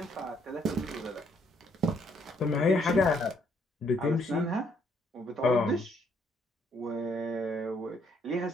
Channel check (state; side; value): normal; both; correlation 0.70